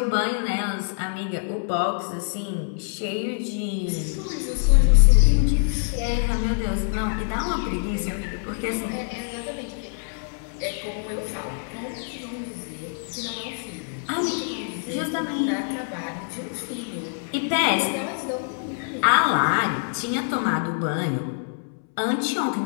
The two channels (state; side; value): silent; right; 62 dB below the other